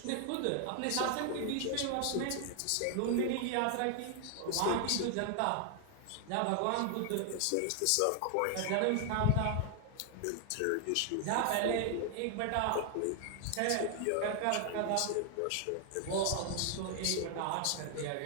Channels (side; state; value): both; different; correlation 0.00